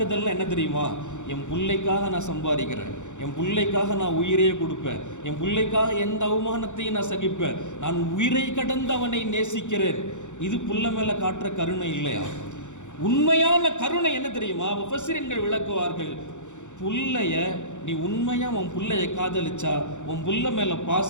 என்ன தெரியுமா? என் பிள்ளைக்காக நான் சம்பாதிக்கிறேன், என் பிள்ளைக்காக நான் உயிரையே கொடுப்பேன், என் பிள்ளைக்காக எந்த அவமானத்தையும் நான் சகிப்பேன், நான் உயிரை கடந்து அவனை நேசிக்கிறேன். இது புள்ள மேல காட்டுற கருணை இல்லையா? உண்மையான கருணை என்ன தெரியுமா? முஃபஸ்ஸிரீன்கள் விளக்குவார்கள், புள்ளைய நீ உண்மையா உன் புள்ளைய காதலிச்சா, உன் புள்ள மேல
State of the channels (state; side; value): late; right; 0.85 ms